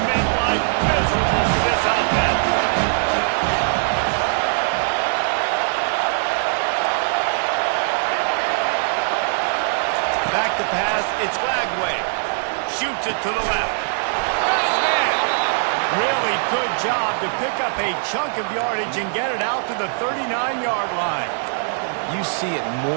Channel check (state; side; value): silent; left; 65 dB below the other